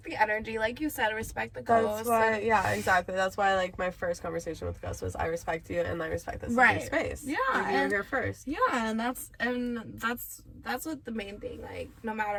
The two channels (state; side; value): identical; both; correlation 1.00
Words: the energy, like you said, respect the ghosts. That's why, exactly. That's why, like, my first conversation with Gus was, I respect you and I respect this space. Yeah, like, you're here first. Yeah, and that's what the main thing. Like, no